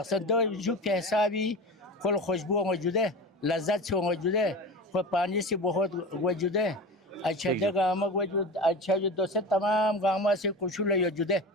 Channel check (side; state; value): both; normal; correlation 0.30